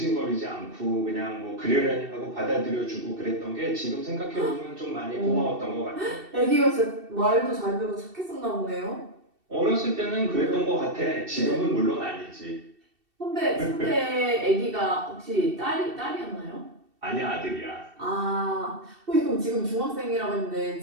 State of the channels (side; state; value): left; late; 2.7 ms